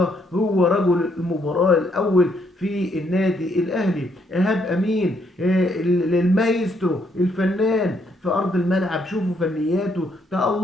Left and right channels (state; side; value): normal; both; correlation 0.72